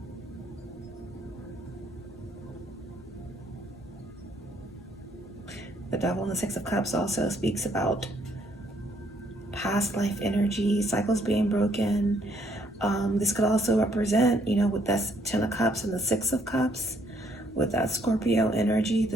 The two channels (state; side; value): normal; both; correlation 0.68